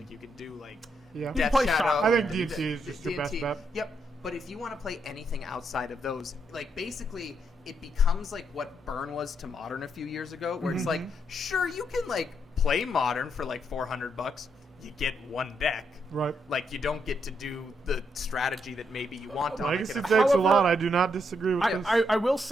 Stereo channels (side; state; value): both; normal; correlation 0.78